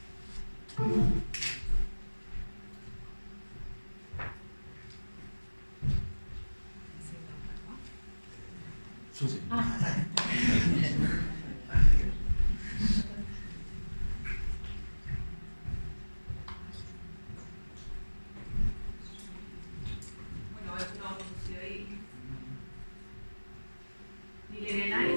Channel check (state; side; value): inverted; both; correlation -1.00